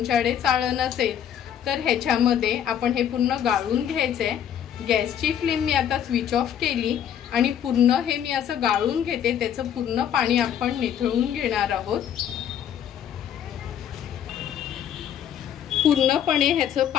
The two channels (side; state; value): right; quieter; 9.4 dB